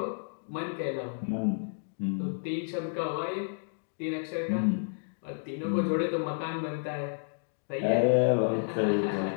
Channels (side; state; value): right; silent; digital silence